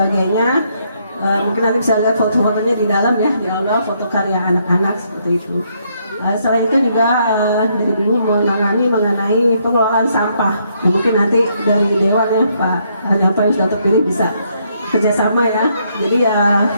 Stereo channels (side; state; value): both; inverted; correlation -0.73